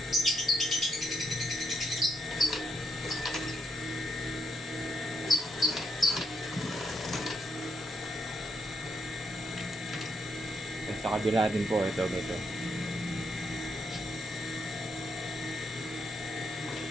Sa kabila din po ito dito.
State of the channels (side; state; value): both; normal; correlation 0.76